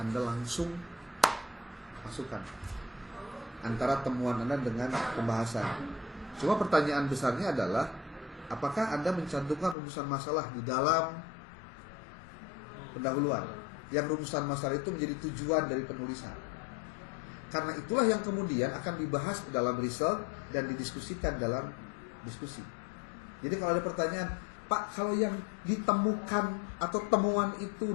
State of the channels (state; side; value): drops out; right; at 9.8 s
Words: langsung masukkan antara temuan Anda dengan pembahasan. Cuma pertanyaan besarnya adalah, apakah Anda mencantumkan rumusan masalah di dalam pendahuluan? Yang rumusan masalah itu menjadi tujuan dari penulisan. Karena itulah yang kemudian akan dibahas dalam result dan didiskusikan dalam diskusi. Jadi kalau ada pertanyaan, Pak, kalau yang ditemukan atau temuan itu